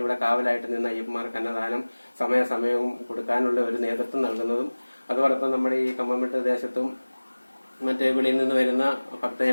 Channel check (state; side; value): inverted; both; correlation -1.00